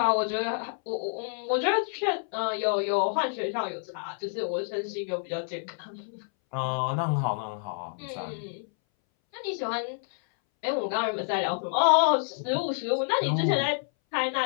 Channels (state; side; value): silent; right; 59 dB below the other